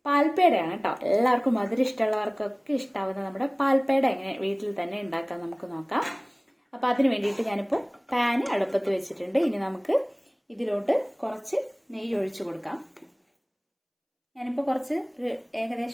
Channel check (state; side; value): identical; both; correlation 1.00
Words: പാൽപ്പേടയാണ് കേട്ടോ. എല്ലാവർക്കും മധുരം ഇഷ്ടമുള്ളവർക്കൊക്കെ ഇഷ്ടാവുന്ന നമ്മുടെ പാൽപ്പേട എങ്ങനെ വീട്ടിൽ തന്നെ ഉണ്ടാക്കാൻ നമുക്ക് നോക്കാം. അപ്പോൾ അതിന് വേണ്ടിയിട്ട് ഞാനിപ്പോൾ പാന് അടുപ്പത്ത് വെച്ചിട്ടുണ്ട്. ഇനി നമുക്ക് ഇതിലോട്ട് കുറച്ച് നെയ്യ് ഒഴിച്ചു കൊടുക്കാം. ഞാനിപ്പോൾ